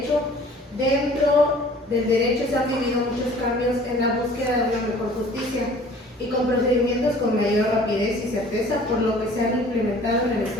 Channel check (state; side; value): normal; both; correlation 0.50